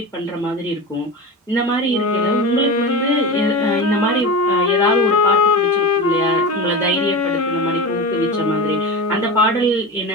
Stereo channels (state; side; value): normal; both; correlation 0.26